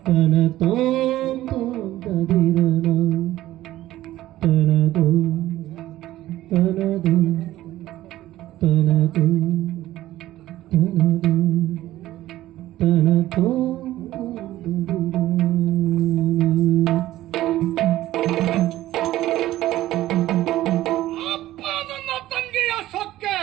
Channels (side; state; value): left; quieter; 15.0 dB